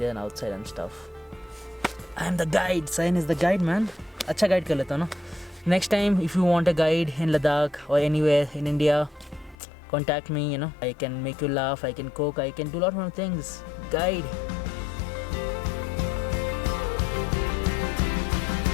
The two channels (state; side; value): drops out; right; at 9.6 s